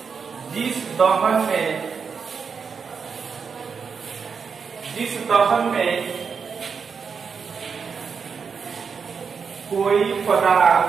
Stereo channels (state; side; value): quieter; left; 5.9 dB